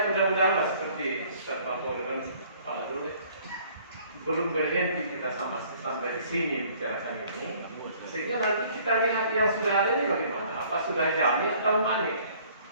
mudah-mudahan seperti Ustaz Mahmud dan Pak Dule belum berhenti kita sampai di sini bicarakan ini, sehingga nanti kita lihat yang sudah ada ini bagaimana, apa sudah jami atau manik.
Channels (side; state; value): both; inverted; correlation -0.57